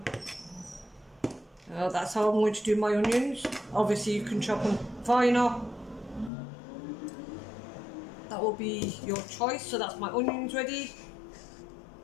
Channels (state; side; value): drops out; right; at 6.3 s